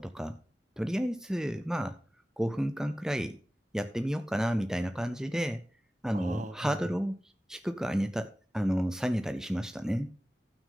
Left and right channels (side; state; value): both; normal; correlation 0.96